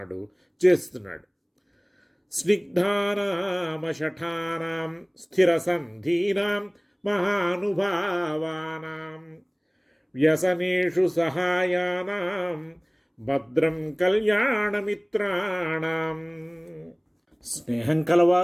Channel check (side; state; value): both; identical; correlation 1.00